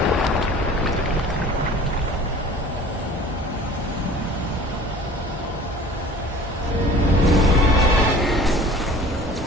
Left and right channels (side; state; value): both; normal; correlation 0.46